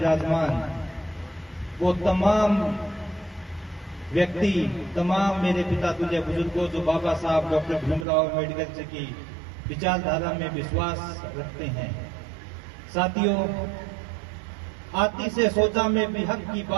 वो तमाम व्यक्ति, तमाम मेरे पिता तुल्य बुजुर्गों जो बाबा साहब डॉक्टर भीमराव अम्बेडकर जी की विचारधारा में विश्वास रखते हैं। साथियों, आती से सोचा में भी हक की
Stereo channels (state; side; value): drops out; left; at 8.1 s